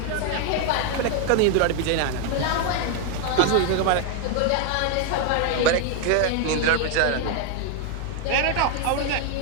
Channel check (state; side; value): different; both; correlation 0.01